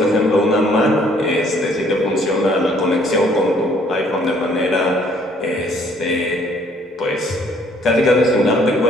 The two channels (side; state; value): both; normal; correlation 0.62